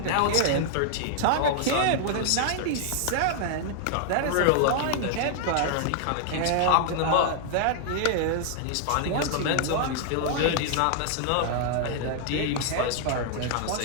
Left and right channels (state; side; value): different; both; correlation -0.01